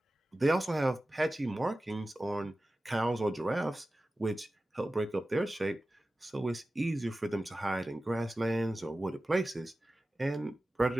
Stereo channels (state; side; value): normal; both; correlation 0.95